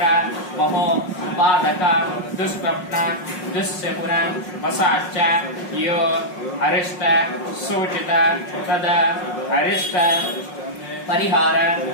महो पादक दुष्स्वप्न दुस्सपुन वसाच यो अरिष्ट सूचित तद अरिष्ट परिहार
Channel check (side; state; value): right; late; 5.5 ms